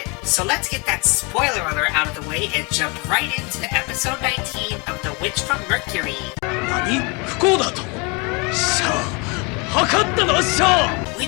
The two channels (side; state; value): right; quieter; 30.5 dB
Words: So let's get that spoiler alert out of the way and jump right into episode 19 of The Witch from Mercury. We